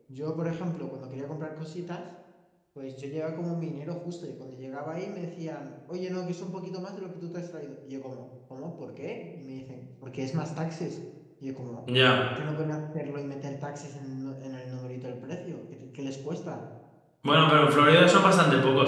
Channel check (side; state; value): both; identical; correlation 1.00